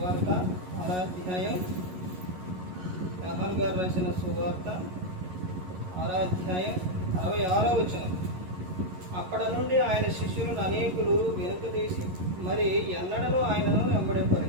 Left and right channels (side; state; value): left; late; 11 ms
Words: 6వ అధ్యాయం, యోహాను గారు రాసిన సువార్త 6వ అధ్యాయం 66వ వచనం. అక్కడ నుండి ఆయన శిష్యులను అనేకులు వెనుకదీసి మరి ఎన్నడూ ఆయనను